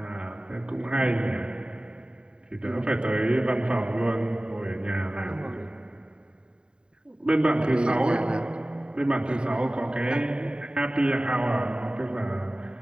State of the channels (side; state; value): left; late; 0.050 ms